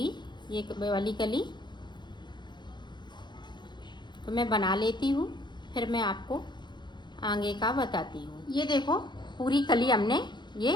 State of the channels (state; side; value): late; right; 0.22 ms